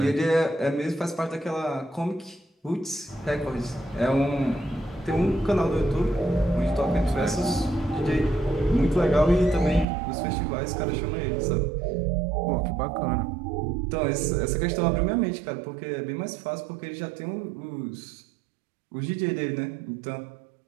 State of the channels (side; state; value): left; drops out; at 9.9 s